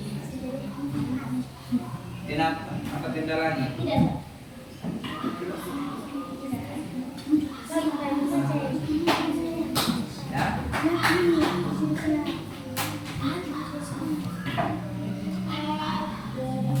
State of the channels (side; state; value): both; identical; correlation 1.00